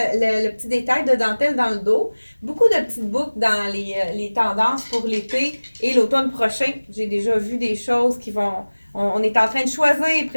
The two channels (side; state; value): both; inverted; correlation -1.00